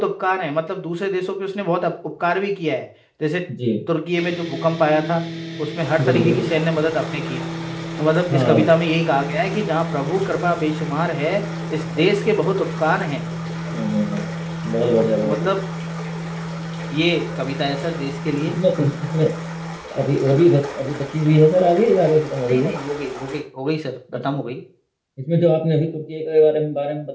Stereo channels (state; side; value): identical; both; correlation 1.00